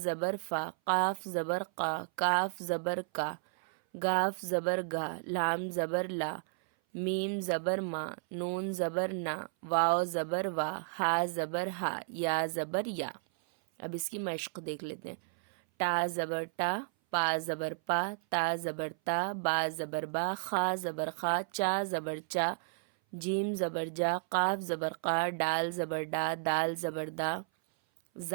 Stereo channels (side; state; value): left; silent; 56 dB below the other